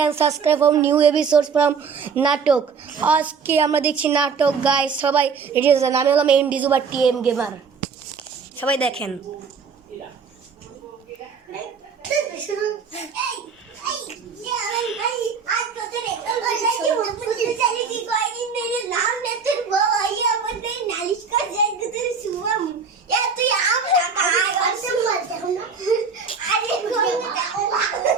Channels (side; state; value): left; quieter; 5.6 dB